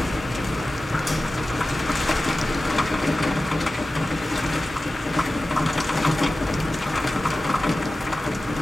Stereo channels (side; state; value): both; normal; correlation 0.95